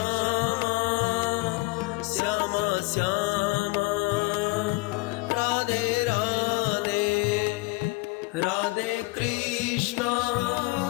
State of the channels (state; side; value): quieter; right; 24.1 dB